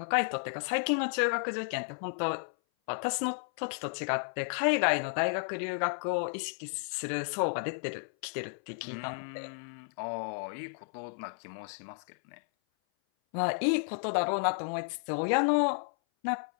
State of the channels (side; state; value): right; silent; 56 dB below the other